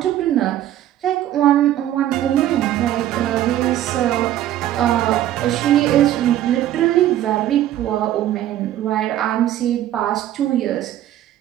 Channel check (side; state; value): left; quieter; 12.6 dB